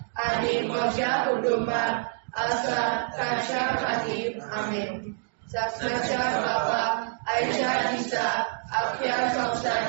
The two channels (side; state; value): left; silent; digital silence